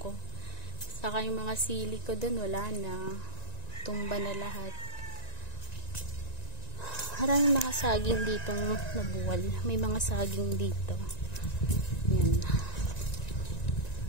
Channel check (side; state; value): right; late; 1.9 ms